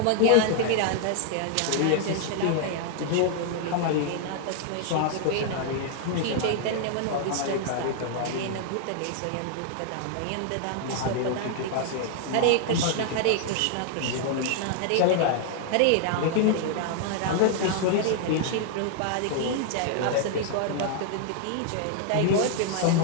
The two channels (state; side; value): different; both; correlation 0.00